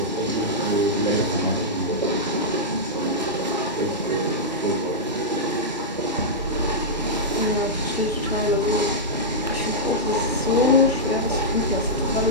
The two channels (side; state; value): both; normal; correlation -0.09